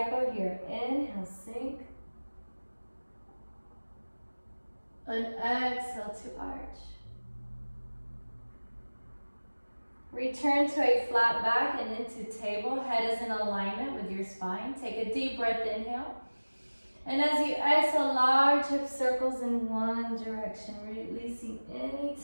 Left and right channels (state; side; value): inverted; both; correlation -1.00